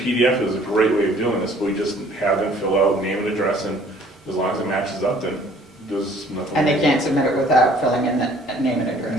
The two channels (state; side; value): normal; both; correlation 0.56